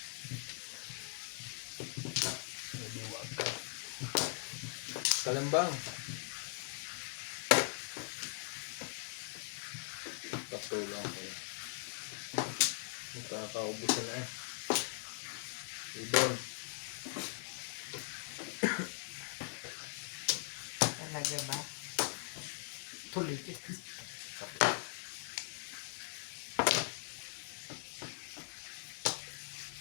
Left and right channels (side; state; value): right; silent; digital silence